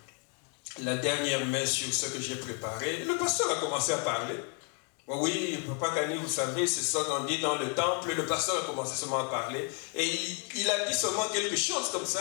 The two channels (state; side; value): quieter; right; 37.9 dB